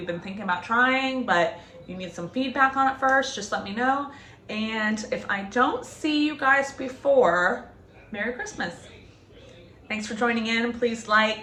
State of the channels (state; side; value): identical; both; correlation 1.00